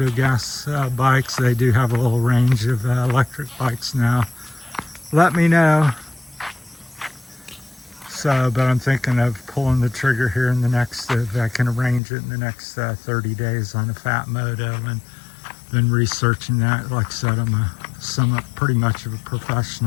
gas bikes, they do have a little range of electric bikes now. Let me know. So, but I'm thinking of pulling the trigger here in the next, if I can arrange it in the next 30 days on a Phatmoto, and been researching that. Like I said, I'm pretty much of a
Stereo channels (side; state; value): right; drops out; at 12.0 s